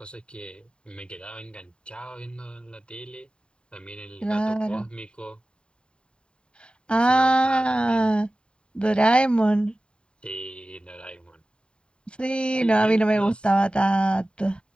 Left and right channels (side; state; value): right; late; 0.052 ms